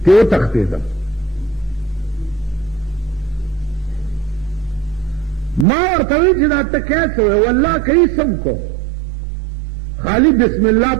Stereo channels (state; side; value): drops out; left; at 5.7 s